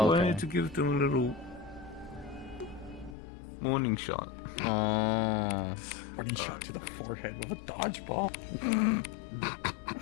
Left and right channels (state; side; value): drops out; right; at 3.2 s